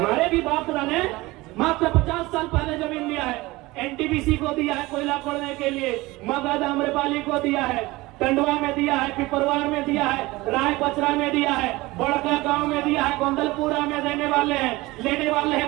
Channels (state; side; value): quieter; left; 20.7 dB